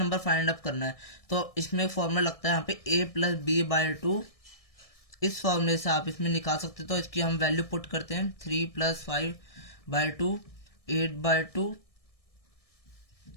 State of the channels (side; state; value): right; late; 1.6 ms